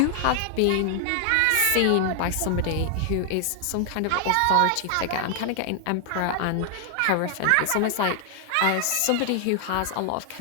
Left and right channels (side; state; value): both; different; correlation 0.00